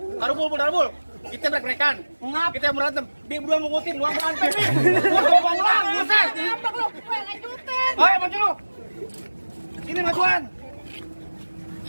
Darubul. Kita break-breakan. Ngap. Kita berantem. Dia berdua mengutin, luang berantem. Gua ngomong ulang, buset. Apa lu? Gue lanjutin. Ayo maju lu. Sini majuan.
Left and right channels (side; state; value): both; inverted; correlation -1.00